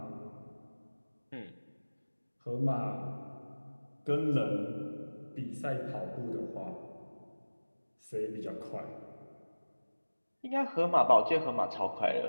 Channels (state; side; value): inverted; both; correlation -1.00